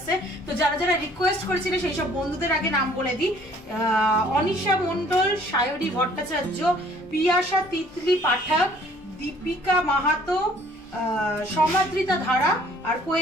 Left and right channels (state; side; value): normal; both; correlation 0.57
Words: তো যারা যারা রিকোয়েস্ট করেছিল সেই সব বন্ধুদের আগে নাম বলে দিই। অনিশা মন্ডল, সায়রী ভট্টাচার্য, পিয়াসা তিতলি পাঠক, দীপিকা মাহাতো, সমাদ্রিতা ধারা আর